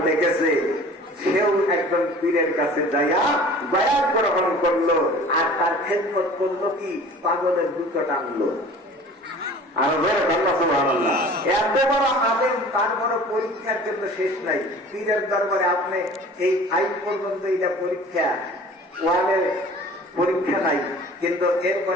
লিখেছে, সেও একজন পীরের কাছে যাইয়া বায়াত গ্রহণ করলো, আর তার খেদমত করলো কি? পাগলের দুটো টানলো। আর সুবহানাল্লাহ, এত বড় আলেম, তার বড় পরীক্ষার জন্য শেষ নাই। পীরের দরবারে আপনি এই 5 পর্যন্ত এটা পরীক্ষা, 1-এর পরীক্ষা নাই, কিন্তু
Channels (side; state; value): both; normal; correlation 0.45